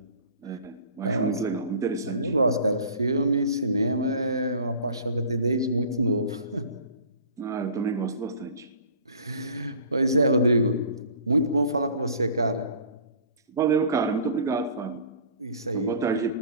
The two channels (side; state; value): both; inverted; correlation -0.45